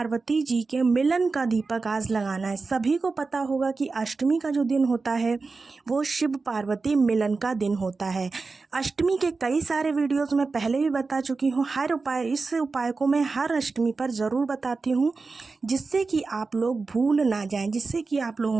जी के मिलन का दीपक आज लगाना है। सभी को पता होगा कि अष्टमी का जो दिन होता है वो शिव पार्वती मिलन का दिन होता है। अष्टमी के कई सारे वीडियोस मैं पहले भी बता चुकी हूँ। इस उपाय को मैं हर अष्टमी पर ज़रूर बताती हूँ, जिससे कि आप लोग भूल ना जाएं, जिससे कि आप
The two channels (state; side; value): quieter; left; 4.1 dB